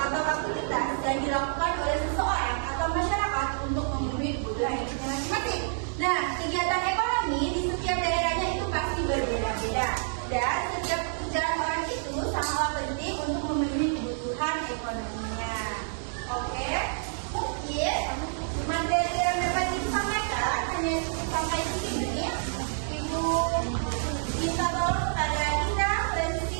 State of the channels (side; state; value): left; silent; digital silence